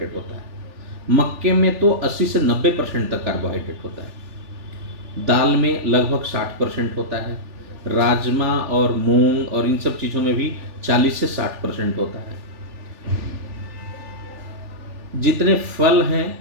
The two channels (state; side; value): late; left; 3.4 ms